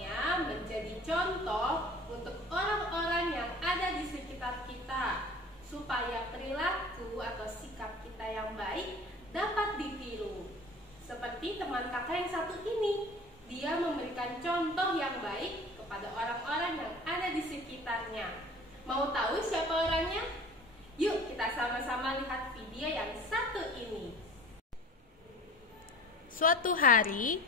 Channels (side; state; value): both; normal; correlation 0.42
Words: menjadi contoh untuk orang-orang yang ada di sekitar kita, supaya perilaku atau sikap kita kita yang baik dapat ditiru. Seperti teman kakak yang satu ini, dia memberikan contoh yang baik kepada orang-orang yang ada di sekitarnya. Mau tahu siapa orangnya? Yuk kita sama-sama lihat video yang satu ini. Suatu hari,